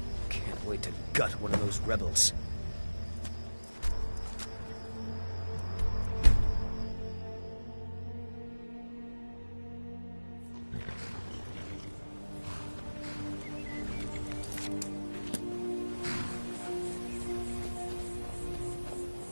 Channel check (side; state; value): both; inverted; correlation -1.00